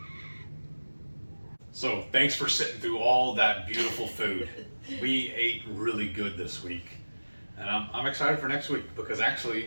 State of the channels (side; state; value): both; inverted; correlation -1.00